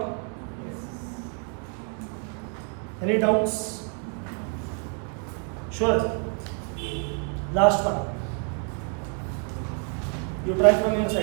Yes. Any doubts? Sure. Last one. You try from your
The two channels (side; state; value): left; quieter; 39.7 dB